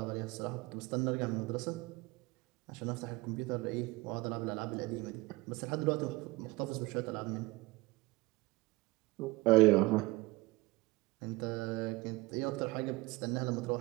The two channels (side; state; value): left; quieter; 22.1 dB